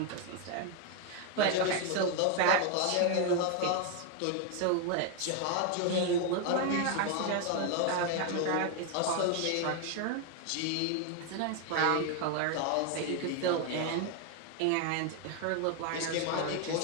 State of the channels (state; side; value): different; both; correlation 0.01